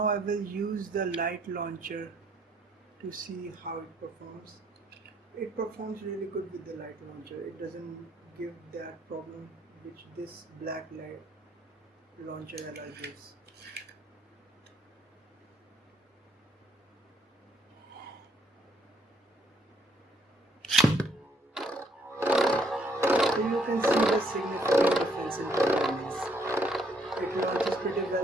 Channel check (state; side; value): normal; both; correlation 0.68